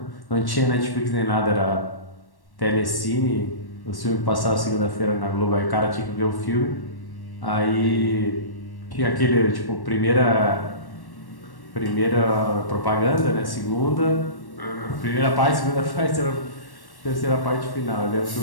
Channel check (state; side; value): late; right; 1.1 ms